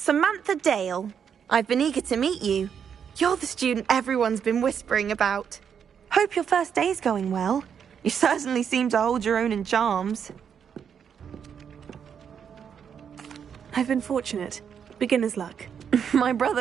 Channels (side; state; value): left; quieter; 7.6 dB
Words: Dale. I've been eager to meet you. You're the student everyone's been whispering about. Hope your first day's going well. You certainly seem to hold your own in charms. I've been fortunate. Beginner's luck. My